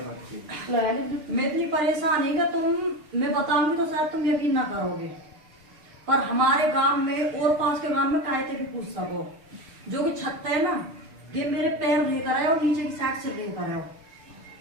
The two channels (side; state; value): left; late; 6.7 ms